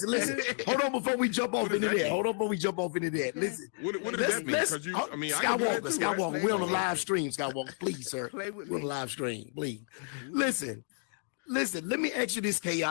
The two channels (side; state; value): right; silent; 57 dB below the other